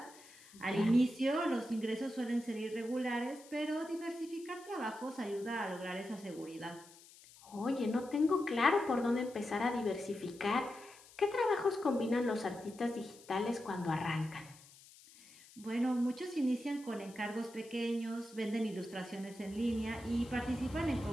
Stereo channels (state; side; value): noise; left; hiss, 22 dB below the sound